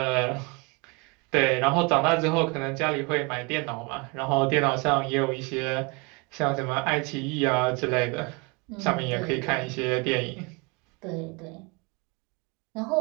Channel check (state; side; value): quieter; left; 29.4 dB